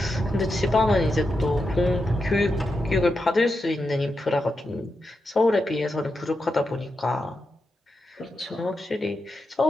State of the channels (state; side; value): normal; both; correlation 0.87